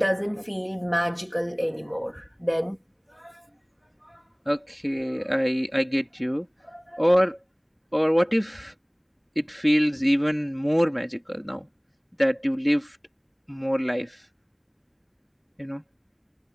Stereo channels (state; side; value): identical; both; correlation 1.00